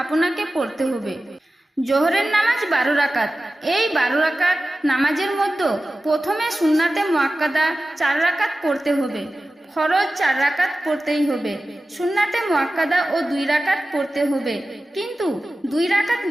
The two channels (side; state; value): both; normal; correlation 0.95